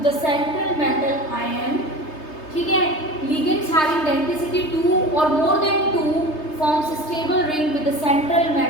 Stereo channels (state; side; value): late; right; 3.3 ms